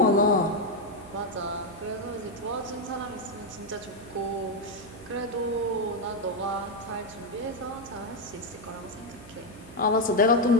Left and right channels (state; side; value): noise; right; hum, 19 dB below the sound